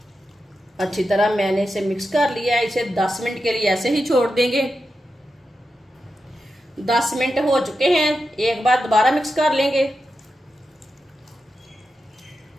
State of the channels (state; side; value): normal; both; correlation 0.89